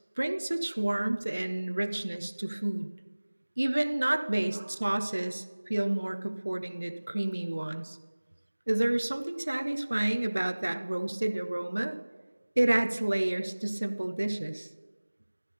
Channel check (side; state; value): both; inverted; correlation -1.00